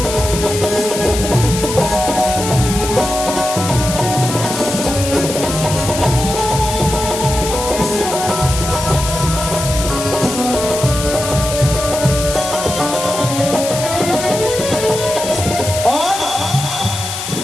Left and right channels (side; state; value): left; noise; hiss, 6 dB below the sound